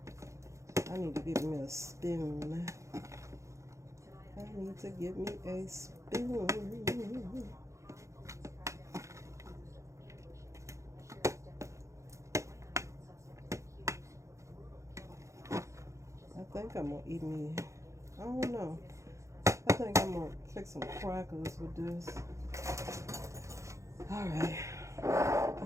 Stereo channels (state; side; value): late; left; 0.15 ms